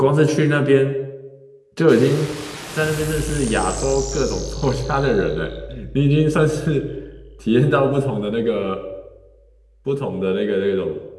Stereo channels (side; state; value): both; identical; correlation 1.00